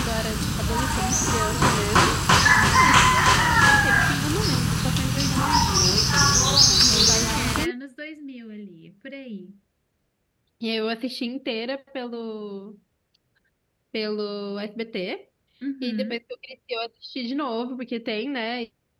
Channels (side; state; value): both; identical; correlation 1.00